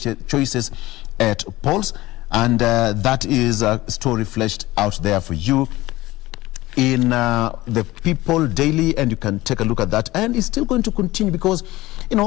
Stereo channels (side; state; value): right; quieter; 18.3 dB